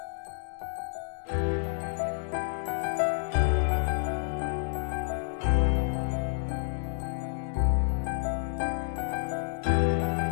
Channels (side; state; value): right; silent; digital silence